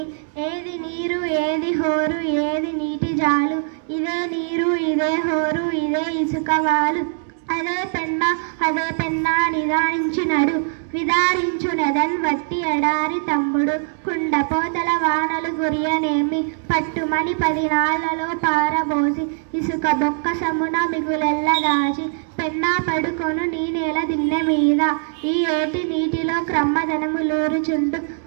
ఏది నీరు ఏది హోరు ఏది నీటి జాలు, ఇదే నీరు ఇదే హోరు ఇదే ఇసుకవాలు. అదే పెన్నా నిదానించినడు, విదారించునదన్ వట్టి ఎడారి తమ్ముడు. కుండపోతల వానలు గురియనేమి, పట్టుమని 10 నాళ్లలో పారబోసి, ఇసుక బొక్క సమున మిగులెల్ల దాచి, పెన్నా పడుకొను నీ నేల దిన్నె మీద. ఈ ఏటి నీటిలో క్రమ్మదనములూరుచుండు,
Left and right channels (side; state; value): left; silent; digital silence